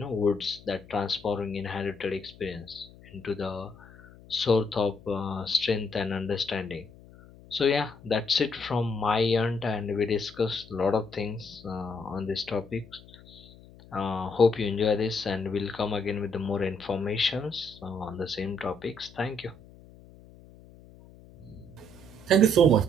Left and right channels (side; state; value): left; noise; hum, 22 dB below the sound